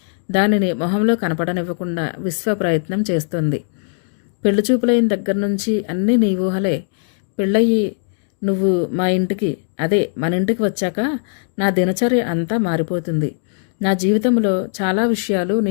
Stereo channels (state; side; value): silent; right; digital silence